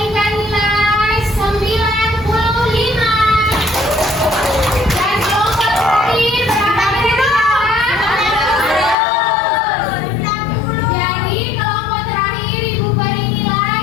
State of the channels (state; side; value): drops out; right; at 9.0 s